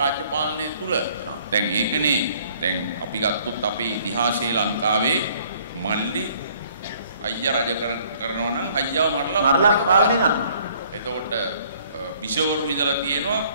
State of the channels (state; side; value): inverted; both; correlation -0.60